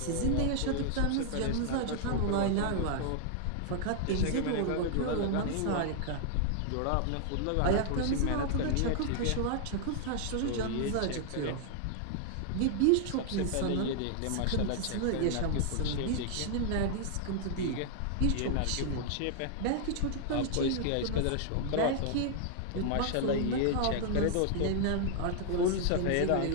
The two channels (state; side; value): different; both; correlation 0.00